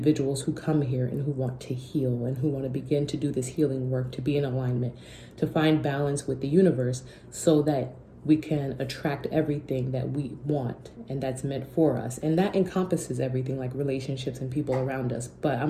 who come here and who want to heal and who want to begin to do this healing work, to be in alignment, to find balance with the universe so that we can attract everything that we want and that's meant for us. And that encompasses everything like relationships and people around us. But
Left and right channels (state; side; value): identical; both; correlation 1.00